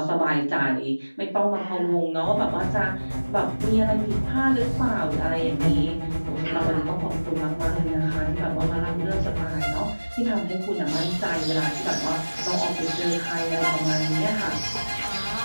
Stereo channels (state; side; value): inverted; both; correlation -1.00